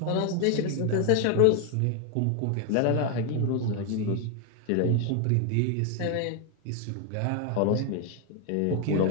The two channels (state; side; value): different; both; correlation 0.01